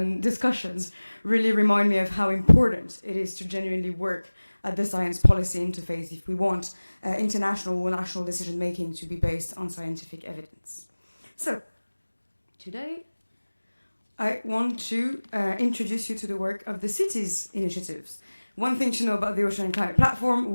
discussions really remind me of how important it is to genuinely work at the science policy interface if we want international or national decision-making to be based on scientific evidence. So, today I want to introduce you to the work of the cities initiatives. One thing to know about the Ocean and Climate Platform,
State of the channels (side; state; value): both; inverted; correlation -1.00